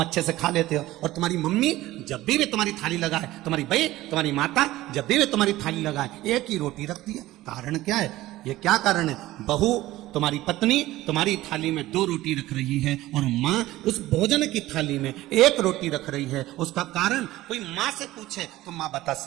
अच्छे से खा लेते हो। और तुम्हारी मम्मी जब भी वे तुम्हारी थाली लगाए, तुम्हारी बहन, तुम्हारी माता जब भी वे तुम्हारी थाली लगाए 1 ही रोटी रखती है। कारण क्या है? ये क्या कारण है? बहू तुम्हारी पत्नी तुम्हारी थाली में 2 रोटी रख रही है और मां उस भोजन की थाली में 1 रोटी रख रही है। उसका कारण कोई मां से पूछे तो मां बता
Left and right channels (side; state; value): left; quieter; 16.6 dB